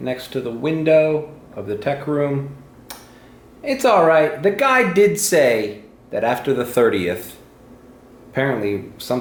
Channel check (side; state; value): both; identical; correlation 1.00